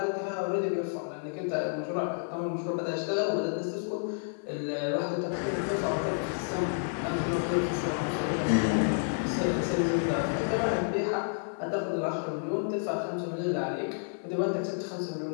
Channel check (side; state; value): right; silent; digital silence